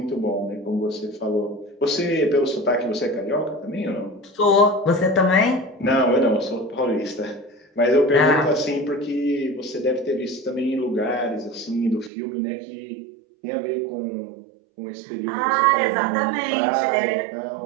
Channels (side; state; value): left; drops out; at 12.1 s